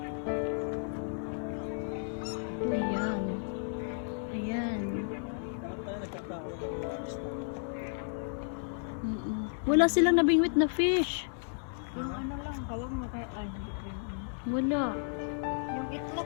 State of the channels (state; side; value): silent; right; digital silence